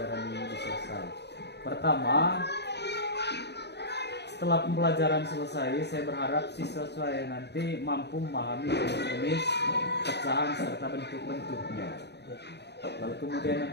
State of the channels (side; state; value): right; late; 0.49 ms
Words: ini selesai. Pertama, setelah pembelajaran selesai, saya berharap siswa saya nanti mampu memahami jenis pecahan serta bentuk-bentuknya. Lalu kemudian